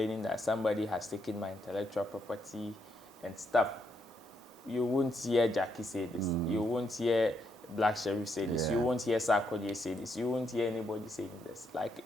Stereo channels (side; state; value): both; normal; correlation 0.77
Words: that somebody has taken my intellectual property and stuff. You won't hear Jackie say this. You won't hear Black Sheriff say this. You won't hear Sarkodie say this. You won't hear anybody saying this, like